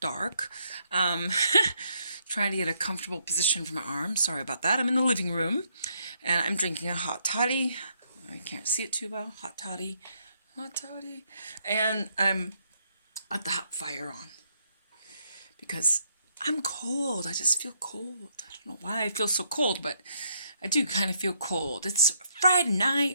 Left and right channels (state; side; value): inverted; both; correlation -0.73